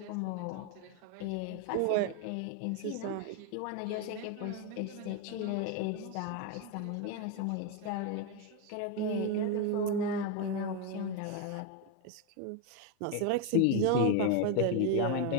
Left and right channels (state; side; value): different; both; correlation 0.02